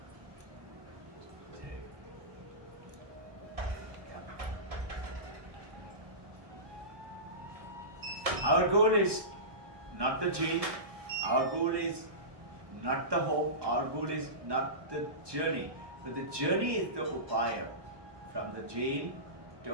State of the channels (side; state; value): left; late; 1.2 ms